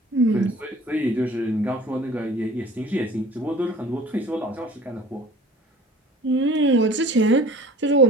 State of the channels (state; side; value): normal; both; correlation 0.46